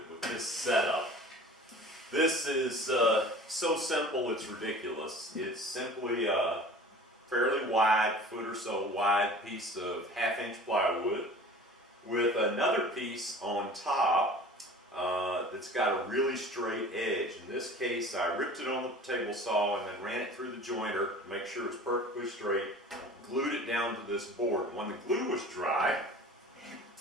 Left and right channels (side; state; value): both; normal; correlation 0.42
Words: with this setup. This is so simple it's ridiculous. It's simply a fairly wide, foot or so wide piece of 1/2-inch plywood with another piece on top that's got a really straight edge. In this case, I ripped it on the table saw and then ran it through the jointer to make sure it's perfectly straight, glued it down to this board. When the glue was dry,